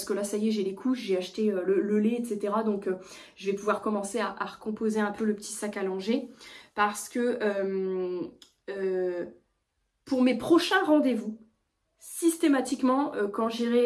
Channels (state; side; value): identical; both; correlation 1.00